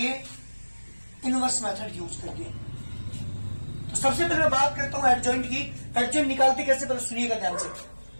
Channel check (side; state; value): both; inverted; correlation -1.00